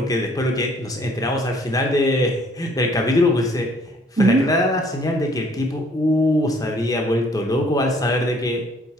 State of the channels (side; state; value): both; normal; correlation 0.60